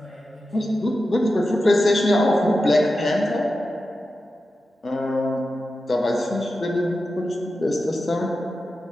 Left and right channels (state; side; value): normal; both; correlation 0.91